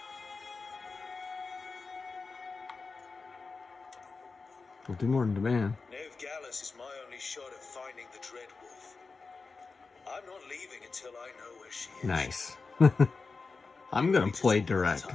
We'll do more than demand. Ned Gallus is my only shot at finding the Dreadwolf. I'm not leaving until I know where she is. Nice. I'm gonna play direct. By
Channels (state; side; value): quieter; right; 4.3 dB